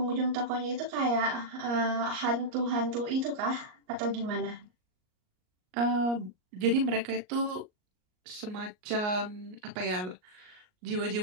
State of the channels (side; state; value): left; late; 38 ms